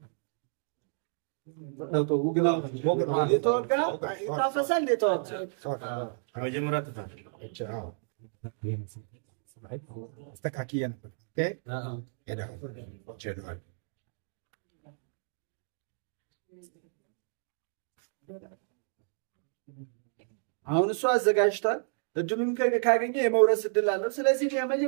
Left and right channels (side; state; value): left; silent; digital silence